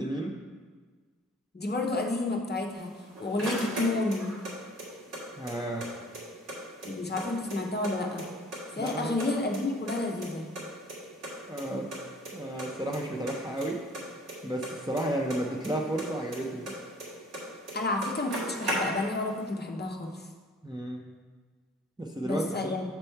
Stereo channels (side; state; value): both; normal; correlation 0.52